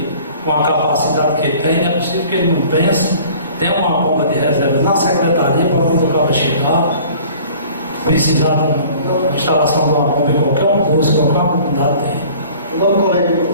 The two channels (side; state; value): both; inverted; correlation -0.49